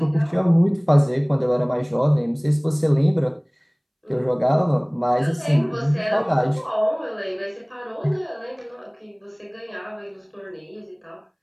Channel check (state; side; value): identical; both; correlation 1.00